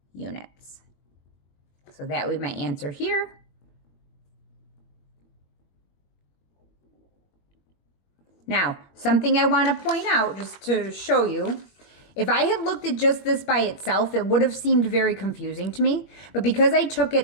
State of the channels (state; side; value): late; right; 21 ms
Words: units. So that would be my answer here. Now, something I want to point out just to show you, if I had looked at just this by itself, it would have seemed very confusing to me. But because I took it